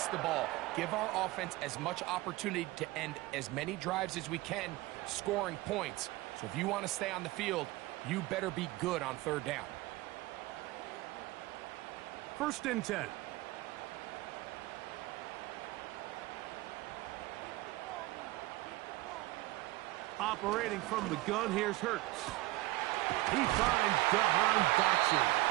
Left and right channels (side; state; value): left; quieter; 19.0 dB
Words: the ball, give our offense as much opportunity to end as many drives as we can, scoring points. So if you want to stay on the field, you better be good on 3rd down. 1st and 10. Operating from the gun, here's Hurts. He finds Jahan Dotson.